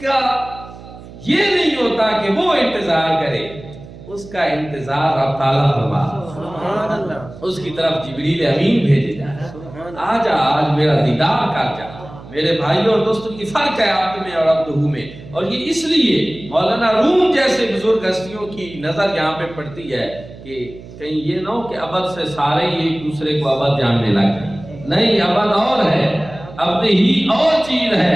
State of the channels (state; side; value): noise; right; hum, 17 dB below the sound